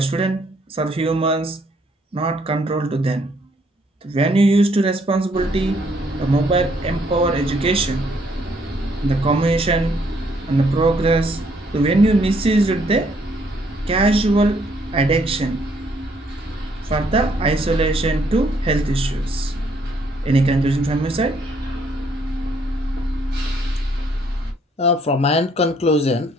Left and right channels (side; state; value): both; normal; correlation 0.68